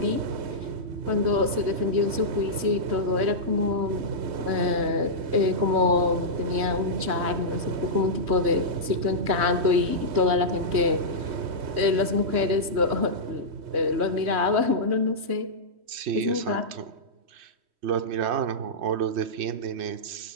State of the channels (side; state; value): left; late; 3.1 ms